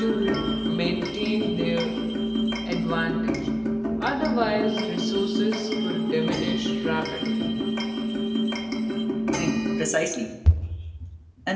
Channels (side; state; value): both; identical; correlation 1.00